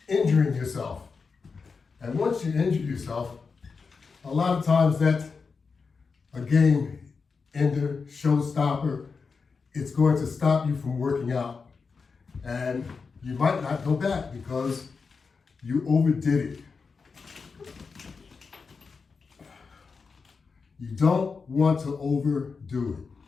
injuring yourself. And once you injure yourself, a lot of times that's a game ender, showstopper. It's going to stop you from working out. And you might not go back because you overdid it. You don't want to overdo it.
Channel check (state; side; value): quieter; right; 5.0 dB